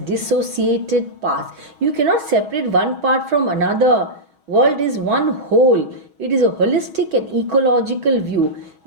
parts. You cannot separate one part from another. World is one whole. It is a holistic and ecological view.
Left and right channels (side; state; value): left; late; 6.3 ms